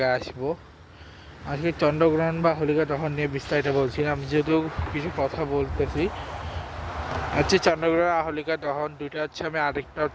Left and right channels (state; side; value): identical; both; correlation 1.00